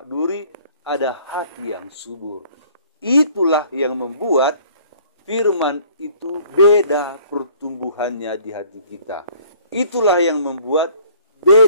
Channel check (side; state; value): both; inverted; correlation -0.55